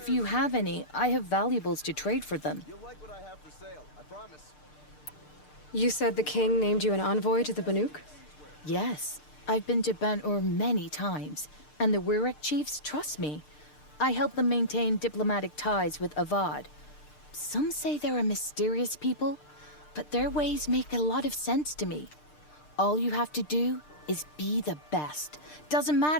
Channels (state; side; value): late; right; 6.7 ms